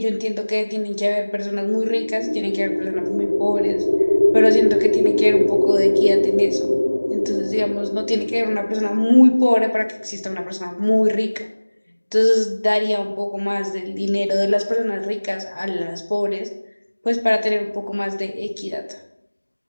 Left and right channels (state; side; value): inverted; both; correlation -1.00